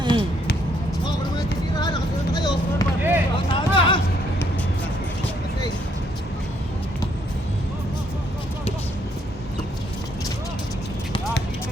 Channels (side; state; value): both; normal; correlation 0.70